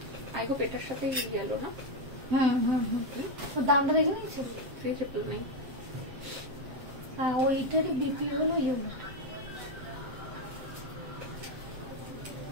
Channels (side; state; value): left; late; 7.7 ms